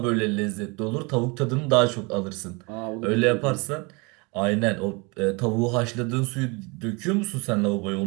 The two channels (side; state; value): left; quieter; 28.9 dB